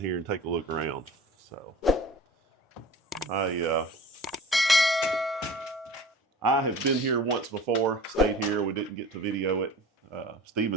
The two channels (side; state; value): both; normal; correlation 0.40